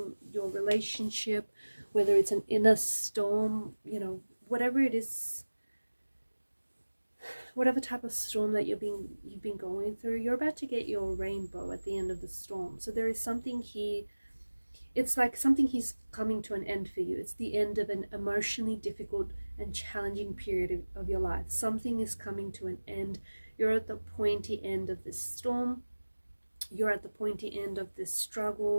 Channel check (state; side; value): inverted; both; correlation -1.00